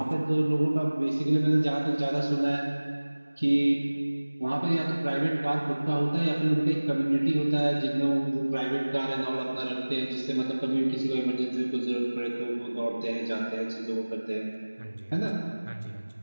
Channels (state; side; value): inverted; both; correlation -1.00